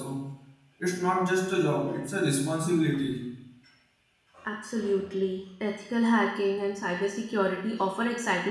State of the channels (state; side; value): identical; both; correlation 1.00